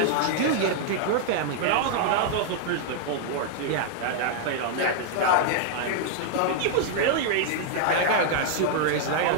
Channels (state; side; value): different; both; correlation 0.00